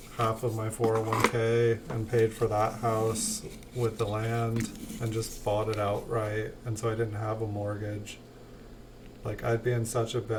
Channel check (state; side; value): identical; both; correlation 1.00